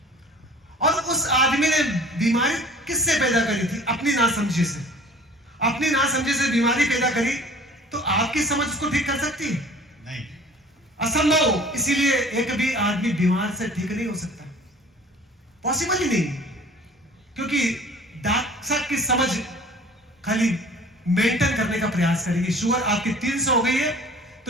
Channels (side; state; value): both; normal; correlation 0.48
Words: और उस आदमी ने बीमारी किससे पैदा करी थी? अपनी नासमझी से। अपनी नासमझी से बीमारी पैदा करी, तो आपकी समझ उसको ठीक कर सकती है? नहीं, असंभव। इसीलिए एक भी आदमी बीमार से ठीक नहीं हो सकता, पॉसिबल ही नहीं, क्योंकि डॉक्टर की समझ खाली मेंटेन करने का प्रयास करेगी। शुगर आपकी 300 हो गई है,